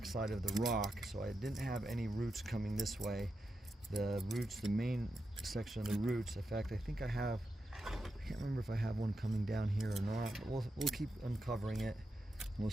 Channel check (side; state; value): both; normal; correlation 0.87